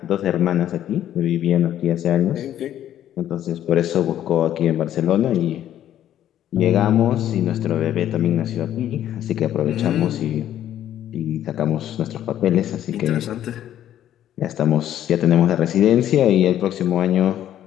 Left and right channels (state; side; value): quieter; right; 11.5 dB